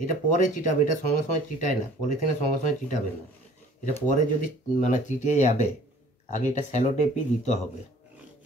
এটা পরে চিটাবে, এটা সঙ্গে সঙ্গে চিটায় না, পলিথিনের সঙ্গে সঙ্গে চিটাবে না। এটা পরে যদি মানে চিটে যাবে, আগে এটা স্যালো টেপই দিতে হবে।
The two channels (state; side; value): normal; both; correlation 0.52